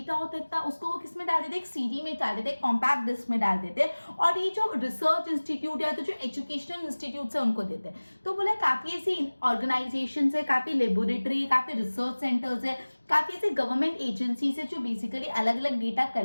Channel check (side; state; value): both; inverted; correlation -1.00